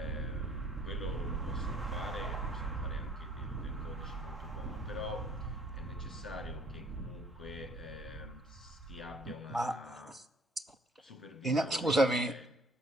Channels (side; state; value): both; normal; correlation 0.59